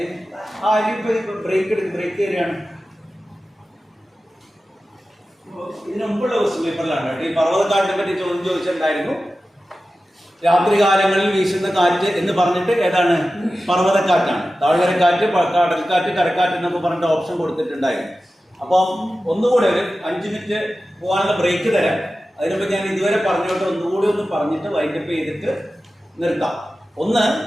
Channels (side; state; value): both; normal; correlation 0.94